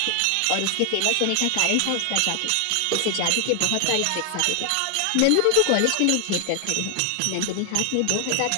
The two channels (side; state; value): both; different; correlation 0.00